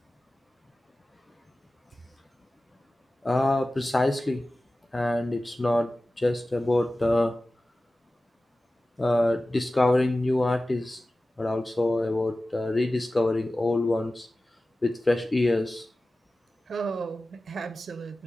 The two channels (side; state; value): both; normal; correlation 0.96